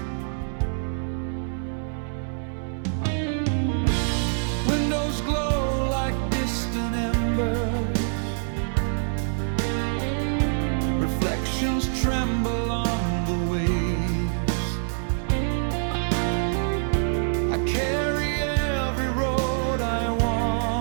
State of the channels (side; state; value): left; silent; 58 dB below the other